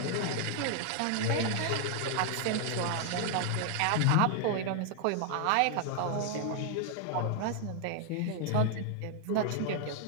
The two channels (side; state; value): both; different; correlation 0.00